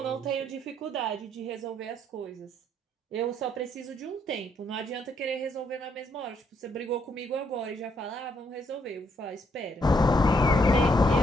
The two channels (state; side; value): normal; both; correlation 0.72